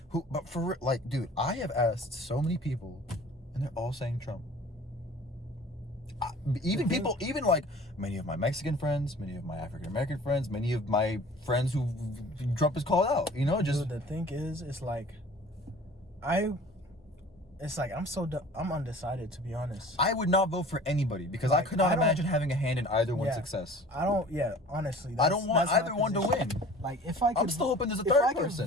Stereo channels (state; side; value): normal; both; correlation 0.45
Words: But for like, dude, I have asked so many people, and they're all saying Trump. Even people, even like many of my Mexican friends, many of my African American friends, many of my friends who Trump is called out. You know, just Dude, the thing is, it's like, I'm undecided, to be honest. I would not vote for anybody because I Like, could not I don't- imagine having a hand in either one's Yeah. success. Honestly, I don't want that's my either one to position. win. Like, if I could, I'm still hoping there's a if third I could